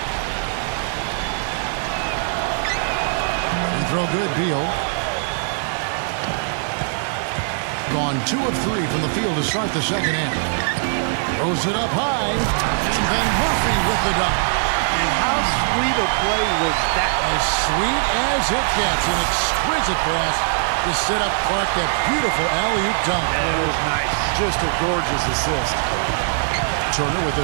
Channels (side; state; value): left; silent; digital silence